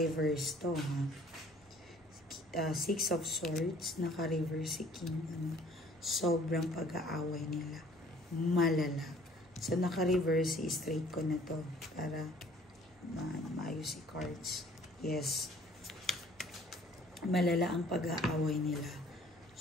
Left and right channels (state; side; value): normal; both; correlation 0.55